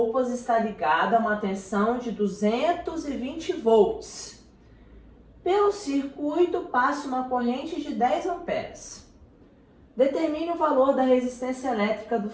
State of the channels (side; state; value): both; identical; correlation 1.00